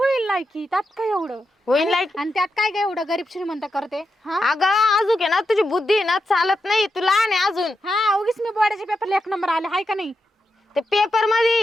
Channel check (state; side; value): normal; both; correlation 0.86